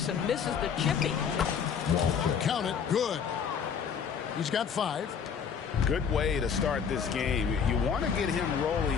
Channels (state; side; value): quieter; right; 7.0 dB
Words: and misses the chippy. Count it. Good. He's got 5. Good way to start this game. You want to get him